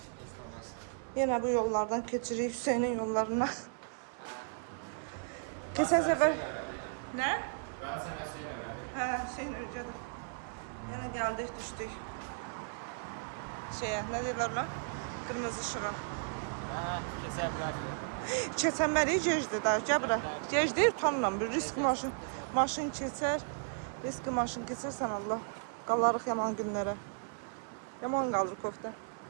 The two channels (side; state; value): left; silent; digital silence